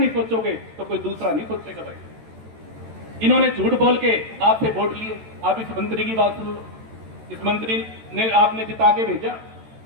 सोचोगे, तो कोई दूसरा नहीं सोचेगा भाई। इन्होंने झूठ बोल के आपसे वोट लिए। आप इस मंत्री की बात सुनो, इस मंत्री ने आपने जिता के भेजा,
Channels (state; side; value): late; left; 14 ms